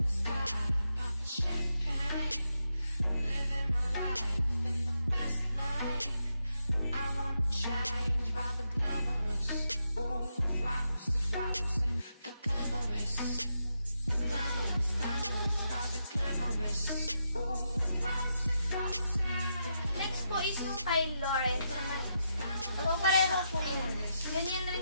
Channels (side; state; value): both; inverted; correlation -0.83